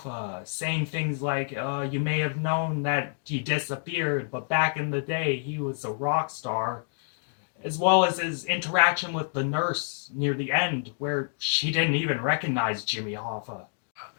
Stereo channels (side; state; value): right; silent; digital silence